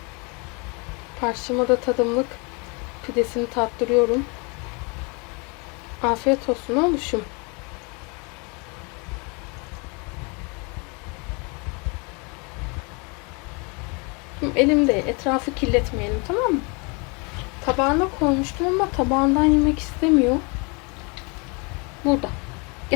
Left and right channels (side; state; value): right; quieter; 31.4 dB